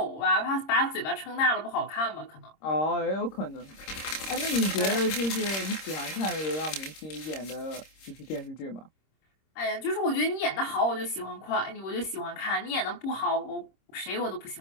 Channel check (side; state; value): right; late; 26 ms